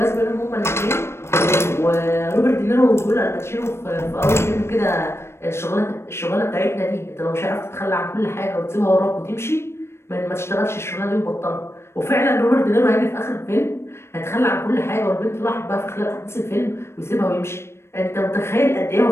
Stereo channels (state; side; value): late; right; 0.12 ms